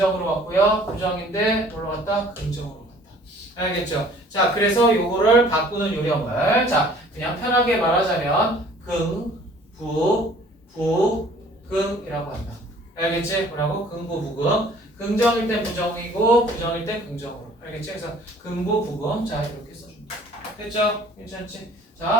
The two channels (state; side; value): normal; both; correlation 0.53